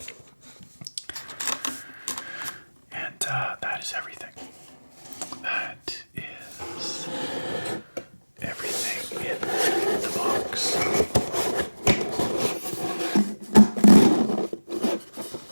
and that is everything. That is everything in the box.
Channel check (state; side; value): inverted; both; correlation -1.00